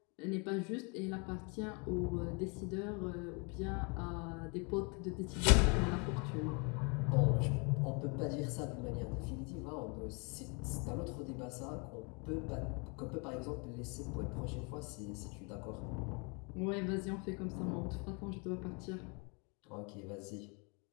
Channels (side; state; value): right; quieter; 33.1 dB